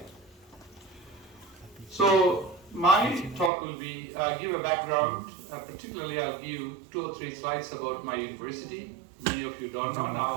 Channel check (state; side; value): drops out; left; at 3.5 s